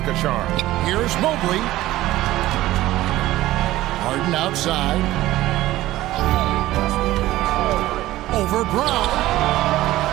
a charm. Here's Mobley. Harden outside. Over Brown.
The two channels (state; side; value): quieter; left; 16.0 dB